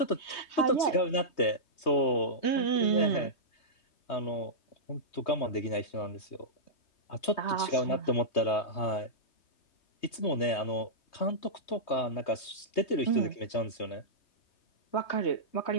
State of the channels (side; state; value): right; late; 3.2 ms